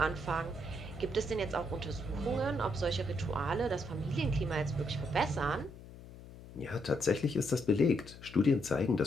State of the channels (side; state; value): left; noise; hum, 16 dB below the sound